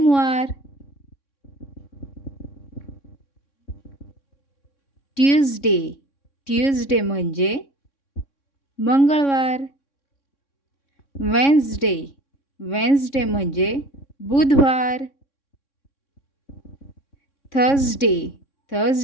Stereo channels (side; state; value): right; late; 3.6 ms